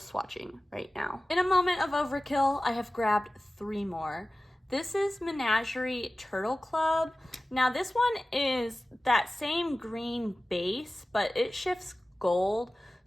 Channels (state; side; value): normal; both; correlation 0.96